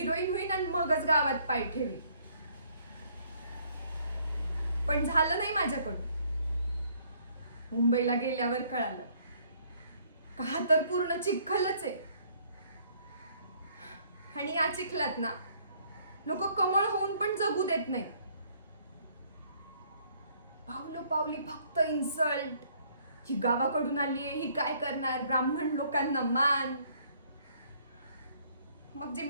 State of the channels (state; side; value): inverted; both; correlation -0.63